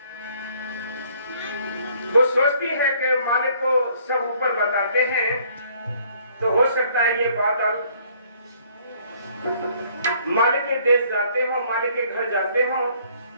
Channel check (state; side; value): inverted; both; correlation -0.61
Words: वो सोचती है कि मालिक को सब ऊपर बताते हैं तो हो सकता है ये बादल मालिक के देश जाते हो, मालिक के घर जाते हो